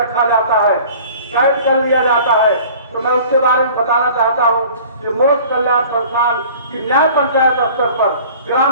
जाता है, कैद कर लिया जाता है। तो मैं उसके बारे में बताना चाहता हूं कि मोक्ष कल्याण संस्थान की न्याय पंचायत स्तर पर,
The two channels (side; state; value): both; inverted; correlation -0.46